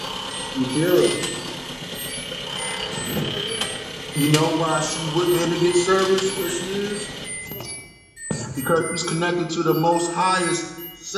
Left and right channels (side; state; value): both; identical; correlation 1.00